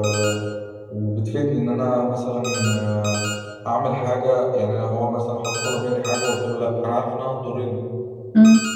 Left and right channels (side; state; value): both; identical; correlation 1.00